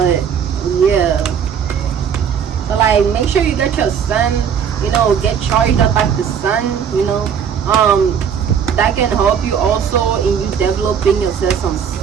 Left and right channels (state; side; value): quieter; left; 7.7 dB